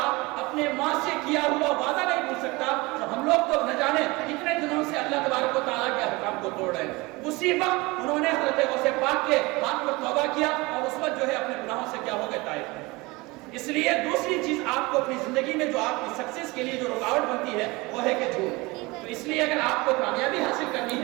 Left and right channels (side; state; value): left; quieter; 23.6 dB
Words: اپنے ماں سے کیا ہوا وعدہ نہیں بھول سکتا، تو ہم لوگ تو نہ جانے کتنے دنوں سے اللہ تبارک و تعالیٰ کے احکام کو توڑ رہے ہیں۔ اسی وقت انہوں نے حضرت غوث پاک کے ہاتھ پر توبہ کیا اور اس وقت جو ہے اپنے گناہوں سے کیا ہو گئے طائب۔ اس لیے دوسری چیز آپ کو اپنی زندگی میں جو آپ کی سکسیس کے لیے جو رکاوٹ بنتی ہے وہ ہے کہ جھوٹ۔ تو اس لیے اگر آپ کو کامیابی حاصل کرنی